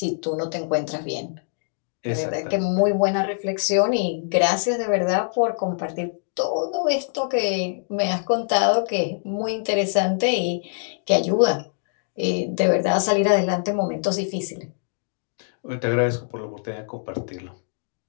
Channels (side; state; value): right; silent; digital silence